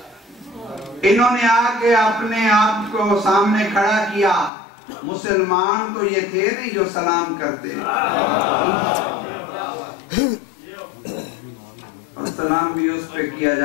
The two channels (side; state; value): right; drops out; at 4.5 s